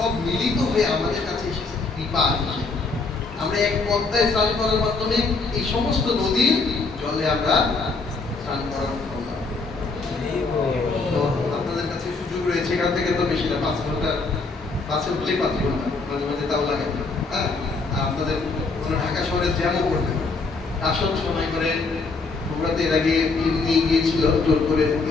মিলিত হয়ে আমাদের কাছে এসেছে কৃপা। আমরা এক পদ্মায় স্নান করার মাধ্যমে এই সমস্ত নদীর জলে আমরা স্নান করার করলাম। তো আপনাদের কাছে সুযোগ রয়েছে, এখান থেকে তো বেশি না, 5 ঘন্টা, বাসে উঠলেই 5 ঘন্টা, মাঝে মাঝে তাও লাগে। হ্যাঁ, আপনাদের কোনো ঢাকা শহরে জ্যামও করতে আসন সময় করে বগুড়াতে এর আগে নিয়ে গিয়েছিল, জোর করে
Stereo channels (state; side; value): quieter; right; 4.0 dB